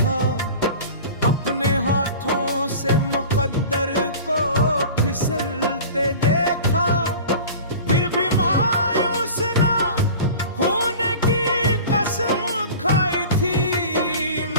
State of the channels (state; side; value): inverted; both; correlation -0.39